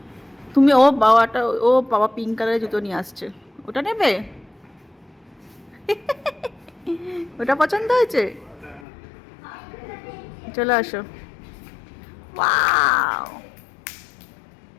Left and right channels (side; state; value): right; drops out; at 8.8 s